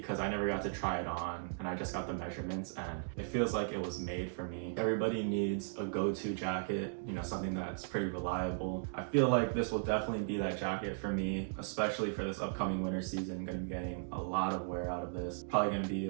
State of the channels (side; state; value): left; silent; digital silence